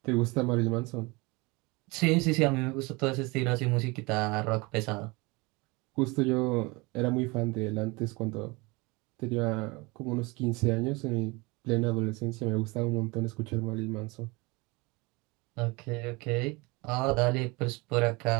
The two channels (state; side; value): quieter; left; 25.7 dB